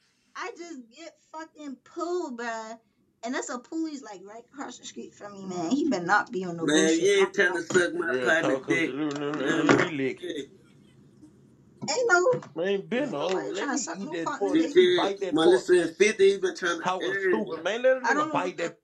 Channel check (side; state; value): both; identical; correlation 1.00